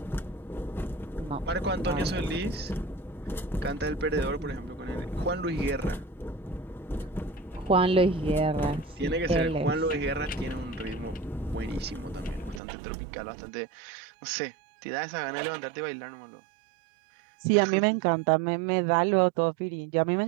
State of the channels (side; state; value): left; drops out; at 12.6 s